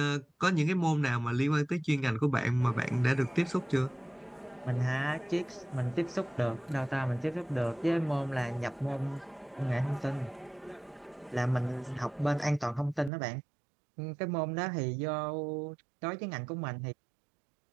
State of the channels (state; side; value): drops out; left; at 13.1 s